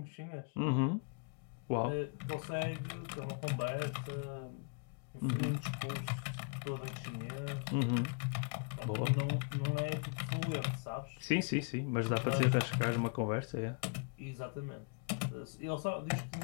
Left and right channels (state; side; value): quieter; right; 37.5 dB